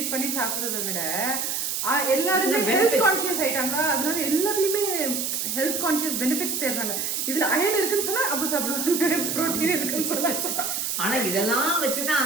பண்ணி சாப்பிடுறத விட எல்லாருமே ஹெல்த் கான்ஷியஸ் ஆயிட்டாங்க. அதனால எல்லாத்துலயுமே ஹெல்த் கான்ஷியஸ் பெனிஃபிட்ஸ் தேடுறாங்க. இதுல அயன் இருக்குன்னு சொன்னா அப்ப சாப்பிடுவாங்க, புரோட்டீன் இருக்குன்னு சொன்னா. ஆனா இதெல்லாம் வச்சுதான்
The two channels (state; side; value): noise; right; hiss, 1 dB below the sound